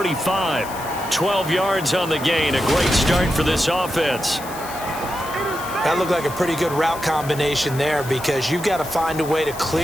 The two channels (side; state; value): left; noise; hiss, 14 dB below the sound